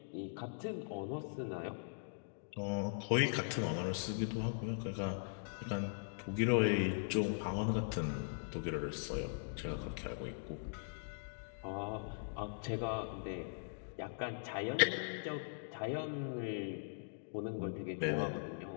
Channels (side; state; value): right; silent; digital silence